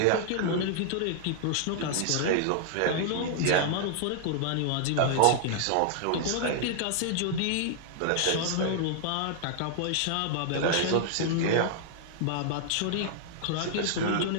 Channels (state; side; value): different; both; correlation -0.01